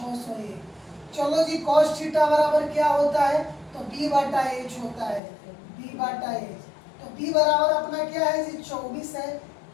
चलो जी, cos थीटा बराबर क्या होता है, तो B बटा H होता है, B बटा H। तो B बराबर अपना क्या है जी, 24 है,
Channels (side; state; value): right; drops out; at 5.2 s